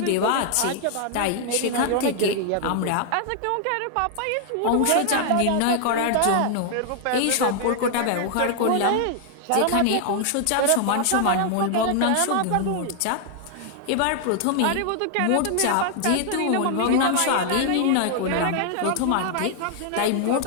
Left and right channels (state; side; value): different; both; correlation 0.00